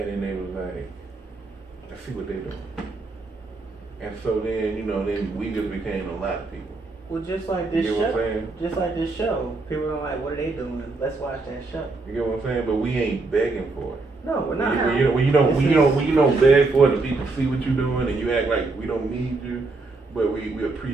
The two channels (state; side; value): quieter; left; 3.6 dB